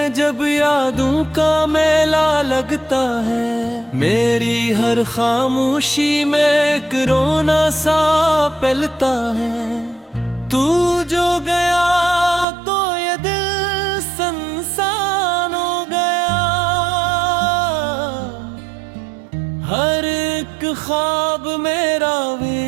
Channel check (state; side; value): drops out; left; at 12.5 s